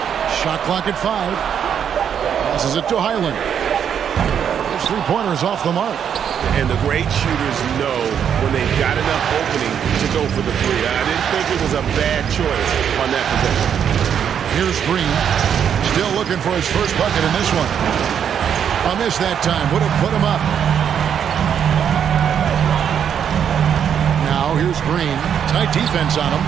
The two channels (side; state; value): left; quieter; 8.3 dB